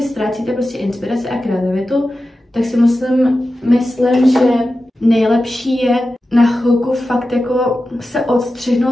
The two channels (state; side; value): normal; both; correlation 0.93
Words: ztrácíte prostě inspiraci a kreativitu, tak si myslím, že nejlepší je na chvilku fakt jako se